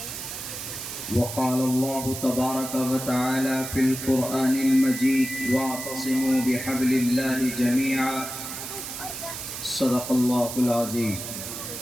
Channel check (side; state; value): right; noise; hiss, 8 dB below the sound